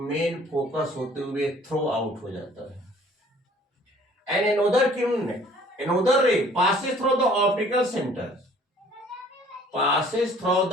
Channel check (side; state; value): both; normal; correlation 0.55